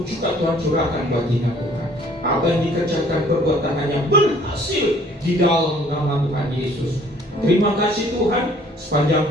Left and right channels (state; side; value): normal; both; correlation 0.57